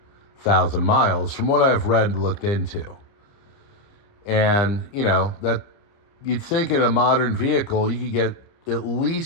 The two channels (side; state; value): right; late; 30 ms